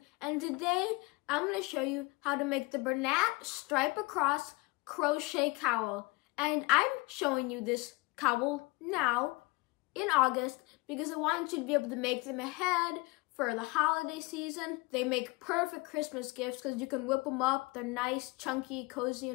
and today I'm going to show you how to make the Bernat stripe across crochet cowl. And I'm showing you this cowl now in August because I wanted you to be able to make them ahead for the holiday season. They make perfect Christmas gifts because you can whip them up. They're nice, chunky, cozy,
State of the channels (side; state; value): right; quieter; 25.2 dB